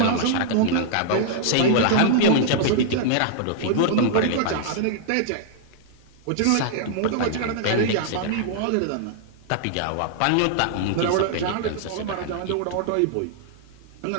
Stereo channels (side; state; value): both; different; correlation -0.01